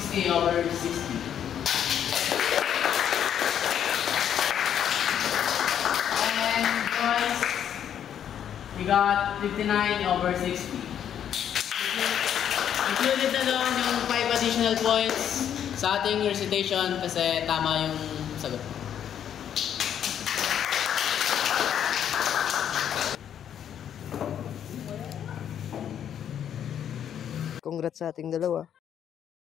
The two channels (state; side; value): quieter; right; 9.4 dB